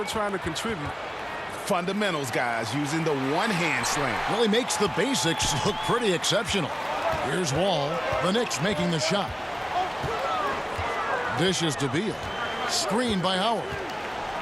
trying to contribute. Fundamentals, guys, using the one-hand slam. Really makes the basics look pretty exceptional. Here's Wall. The Knicks making the shot. Dishes to Beal. Screened by Howard.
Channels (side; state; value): both; identical; correlation 1.00